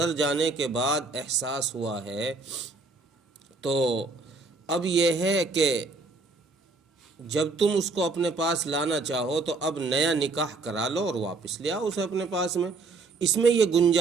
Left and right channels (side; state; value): left; quieter; 3.8 dB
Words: جانے کے بعد احساس ہوا ہے، تو اب یہ ہے کہ جب تم اس کو اپنے پاس لانا چاہو تو اب نیا نکاح کرا لو اور واپس لے آؤ اسے اپنے پاس میں۔ اس میں یہ